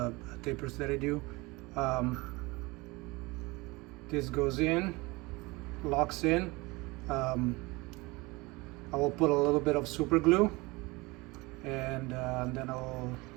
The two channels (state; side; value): quieter; left; 23.6 dB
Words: tapers that I do. This goes in, locks in. I will put a little bit of super glue, and then I'll